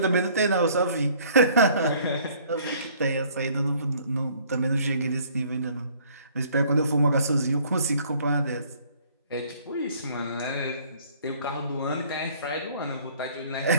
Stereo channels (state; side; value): inverted; both; correlation -0.57